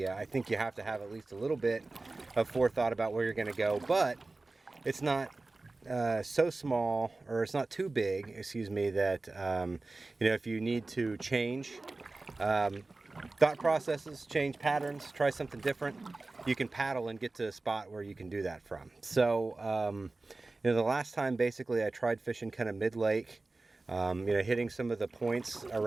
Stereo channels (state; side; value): quieter; left; 3.3 dB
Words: I think you have to have at least a little bit of forethought about where you're going to go, but it's not so small, or it's not too big, excuse me, that you know, if you need to change thought processes, change patterns, try something different, you can paddle and get to a spot where you can do that from. So you know, the last time basically I tried fishing kind of mid-lake, you know, hitting some of the points